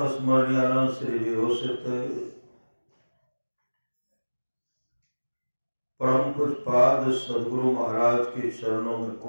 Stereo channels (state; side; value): inverted; both; correlation -1.00